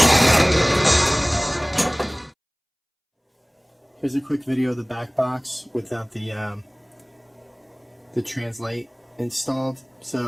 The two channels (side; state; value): both; identical; correlation 1.00